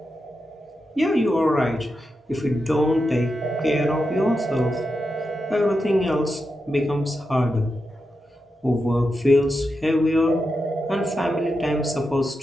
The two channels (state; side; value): normal; both; correlation 0.88